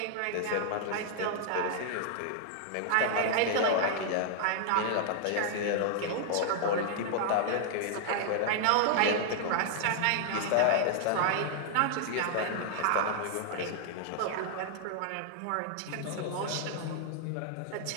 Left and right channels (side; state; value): both; different; correlation 0.00